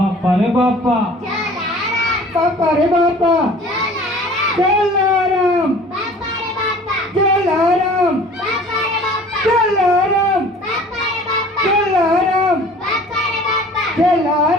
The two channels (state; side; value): normal; both; correlation 0.47